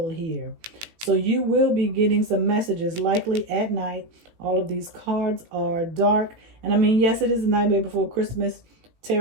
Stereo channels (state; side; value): late; left; 18 ms